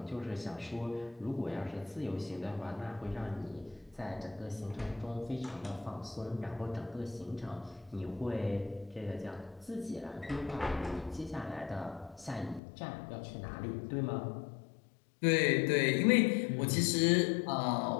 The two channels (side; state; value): right; drops out; at 12.6 s